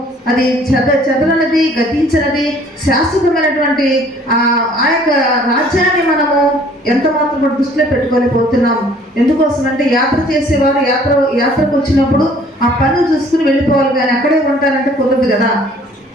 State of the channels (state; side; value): normal; both; correlation 0.56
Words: అది చెదరనది, గతించినది, శాశ్వతమైనటువంటి ఆ యొక్క రాజ్యాన్ని మనము ఎంత మాత్రం కూడా దృష్టిలో పెట్టుకోలేకపోతున్నాము. ఎందుకోసం అంటే యాత్ర చేసేవారు యాత్రకు వచ్చినప్పుడు ఆ పనులు చూసుకుని వెళ్ళిపోవాలి, కానీ అక్కడే ఉంటారంటే కుదరదు కదా.